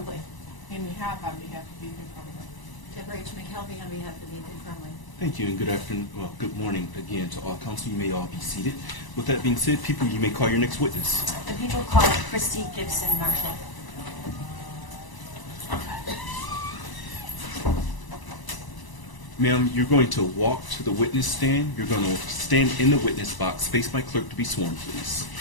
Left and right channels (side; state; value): right; late; 1.0 ms